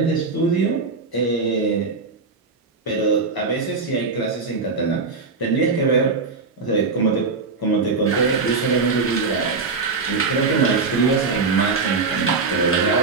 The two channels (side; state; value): left; quieter; 4.4 dB